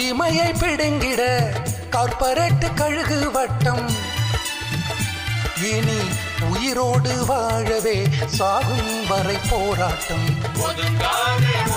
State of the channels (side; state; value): both; identical; correlation 1.00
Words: பிடுங்கிட கார்ப்பரேட் கழுகு வட்டம். இனி உயிரோடு வாழவே சாகும் வரை போராட்டம். ஒதுங்காதே